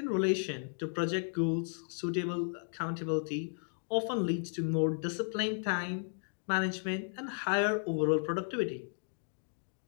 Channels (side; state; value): right; silent; digital silence